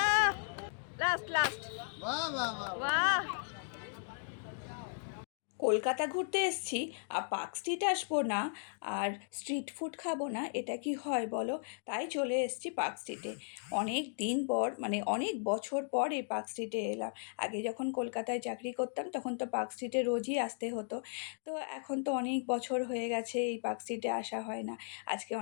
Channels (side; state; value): right; silent; digital silence